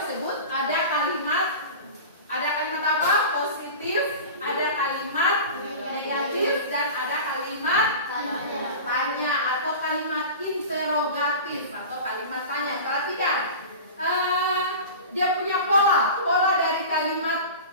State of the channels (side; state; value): both; inverted; correlation -0.33